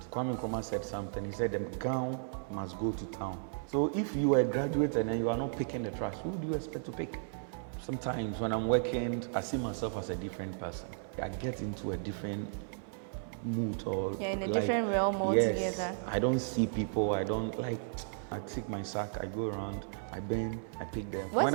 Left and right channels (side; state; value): left; silent; 55 dB below the other